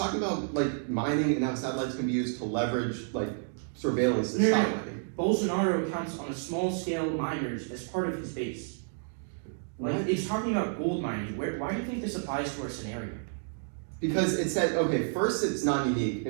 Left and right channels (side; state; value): left; silent; digital silence